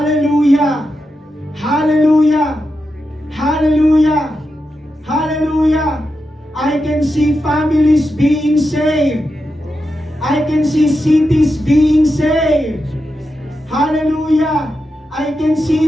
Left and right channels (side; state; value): both; normal; correlation 0.88